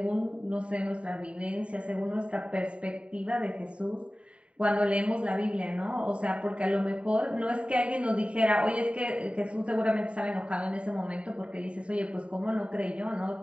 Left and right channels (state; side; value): late; left; 0.060 ms